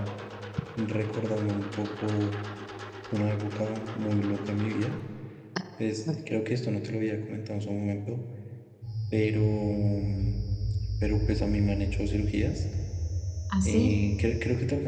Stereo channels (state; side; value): identical; both; correlation 1.00